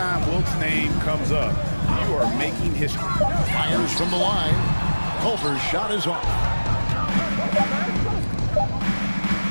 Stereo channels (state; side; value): inverted; both; correlation -1.00